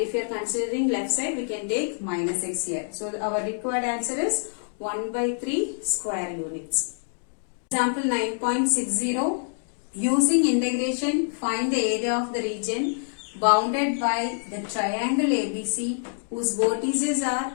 if you are considering left side, we can take minus x here. So our required answer is 1 by 3 square units. Example 9.60. Using integration, find the area of the region bounded by the triangle ABC whose vertices are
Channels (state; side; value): silent; right; digital silence